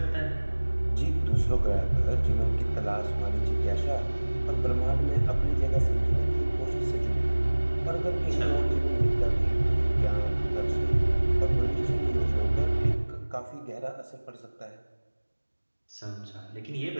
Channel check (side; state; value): both; inverted; correlation -1.00